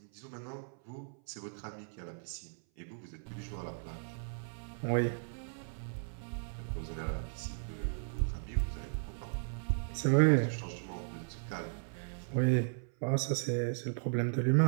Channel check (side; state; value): left; silent; 54 dB below the other